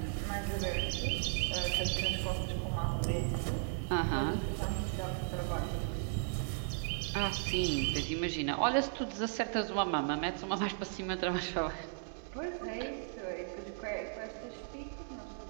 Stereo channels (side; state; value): left; silent; digital silence